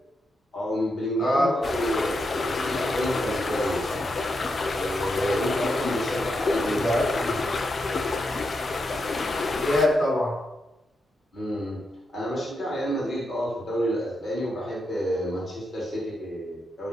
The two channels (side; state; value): both; normal; correlation 0.84